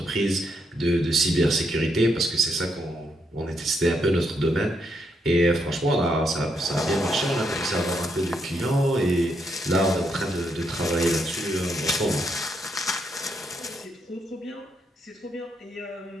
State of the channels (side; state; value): both; normal; correlation 0.78